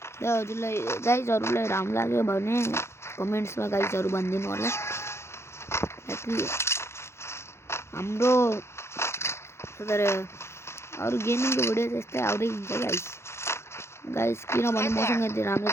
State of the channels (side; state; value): right; late; 0.13 ms